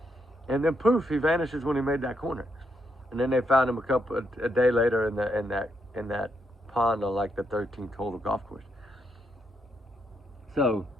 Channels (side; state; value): both; normal; correlation 0.78